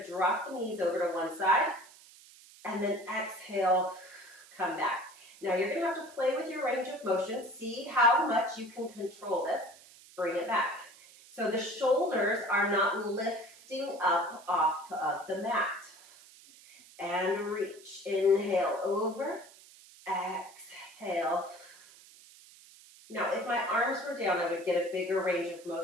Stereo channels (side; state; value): right; noise; hiss, 22 dB below the sound